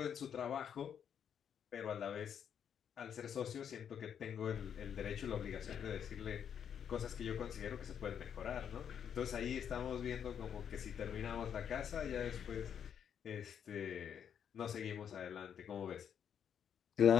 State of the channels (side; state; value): right; quieter; 8.4 dB